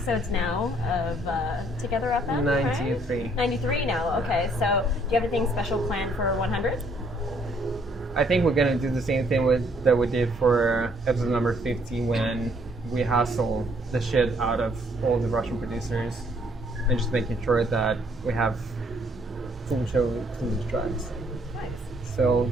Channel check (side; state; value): both; normal; correlation 0.66